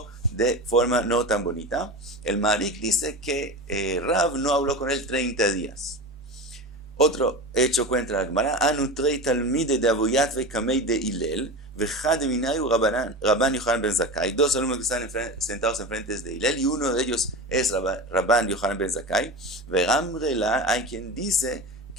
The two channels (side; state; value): both; normal; correlation 0.27